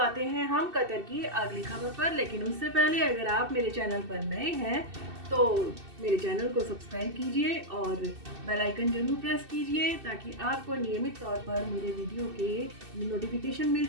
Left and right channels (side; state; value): left; late; 2.7 ms